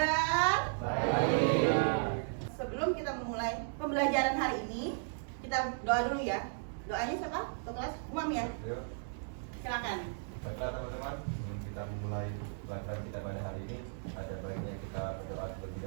Baik. Sebelum kita memulai pembelajaran hari ini, kita doa dulu ya. Doanya siapa? Ketua kelas Umam ya. Yuk, Silakan. baiklah teman-teman, sebelum kita memulai pelajaran kita pada hari ini, ada baiknya kita berdoa terlebih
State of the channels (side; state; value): left; silent; digital silence